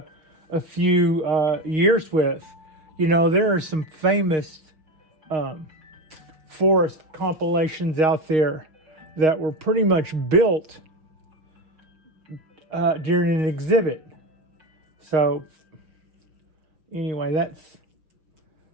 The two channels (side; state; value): left; late; 6.4 ms